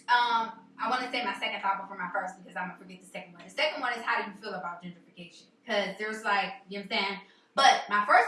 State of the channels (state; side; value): identical; both; correlation 1.00